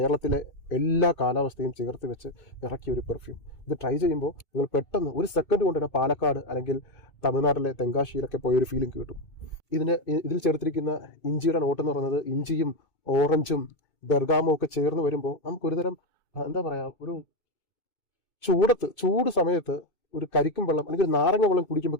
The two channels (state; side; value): late; right; 2.2 ms